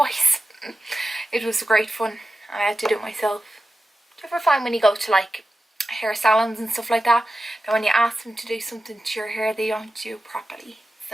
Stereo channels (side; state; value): both; normal; correlation 0.93